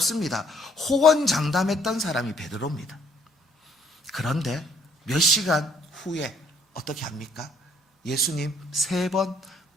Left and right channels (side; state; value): both; normal; correlation 0.65